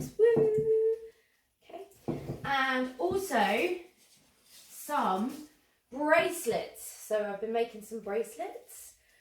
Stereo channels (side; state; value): both; identical; correlation 1.00